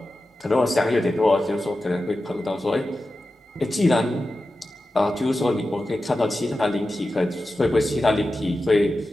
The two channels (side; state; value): both; normal; correlation 0.93